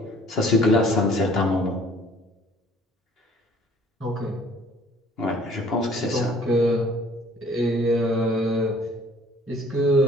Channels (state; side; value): normal; both; correlation 0.56